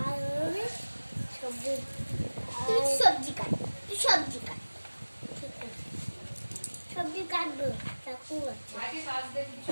সবজি, তুই সবজি কাট, তুই সবজি কাট। ঠিক আছে, সবজি কাটবো। চাকু আছে,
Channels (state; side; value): inverted; both; correlation -1.00